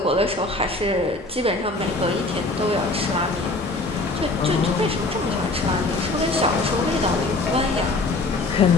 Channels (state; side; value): quieter; right; 3.1 dB